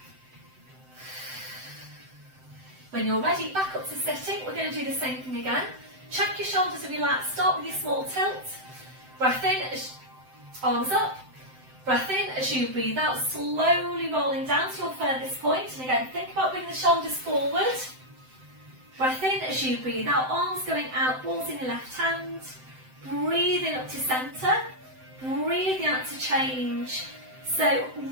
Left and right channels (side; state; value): left; late; 7.8 ms